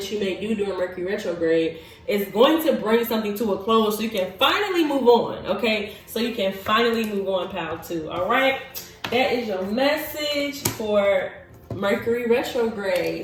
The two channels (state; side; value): identical; both; correlation 1.00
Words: you may do during Mercury retrograde is going to bring something to a close so you can finally move on, okay? So you can finally move on, pal, too, all right? That is your message for Mercury